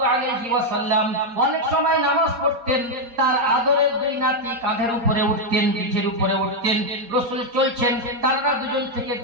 আলাইহি ওয়াসাল্লাম অনেক সময় নামাজ পড়তেন, তার আদরের দুই নাতি কাঁধের উপরে উঠতেন, পিঠের উপরে উঠতেন, রাসূল চলছেন, তারা দুজন থেকে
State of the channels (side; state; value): left; late; 4.3 ms